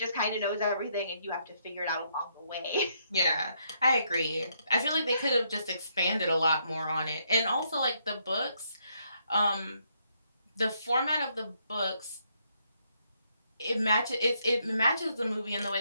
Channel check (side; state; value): both; inverted; correlation -0.74